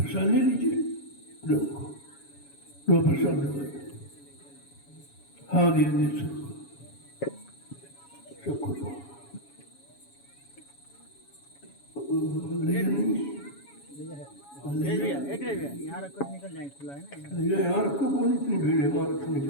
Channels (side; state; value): right; late; 7.2 ms